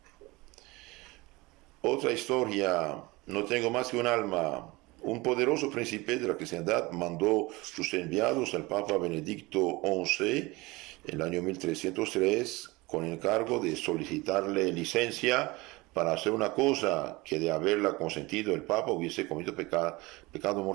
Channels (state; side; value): quieter; left; 22.6 dB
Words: Otra historia: no tengo más que un alma. Un poderoso príncipe de la cristiandad mandó sus enviados al Papa Benedicto XI en el año 1303 con encargo de solicitarle licencia para hacer una cosa que, de haberla consentido el Papa, hubiese cometido pecado